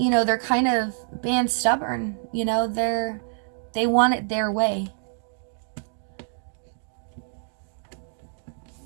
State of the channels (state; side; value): silent; left; digital silence